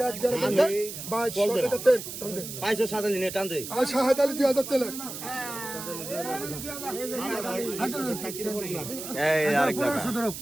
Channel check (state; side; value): noise; right; hiss, 9 dB below the sound